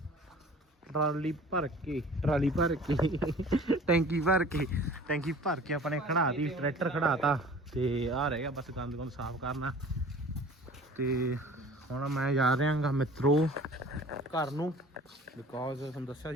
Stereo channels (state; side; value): normal; both; correlation 0.45